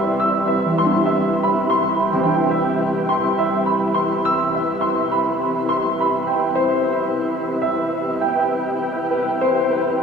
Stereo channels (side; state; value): both; normal; correlation 0.57